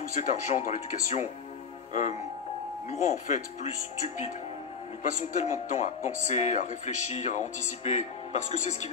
cet argent dans l'éducation nous rend en fait plus stupides. Nous passons tellement de temps à penser, à réfléchir, à anticiper, parce que c'est ce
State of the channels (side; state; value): right; quieter; 6.0 dB